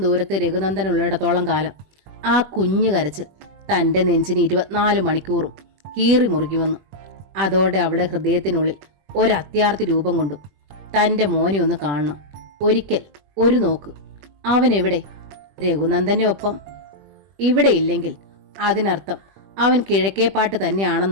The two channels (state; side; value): late; left; 20 ms